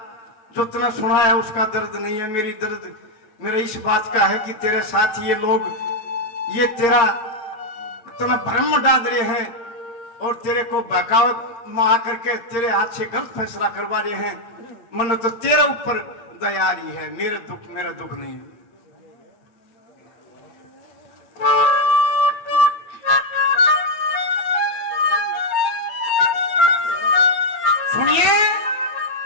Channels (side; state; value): right; late; 8.7 ms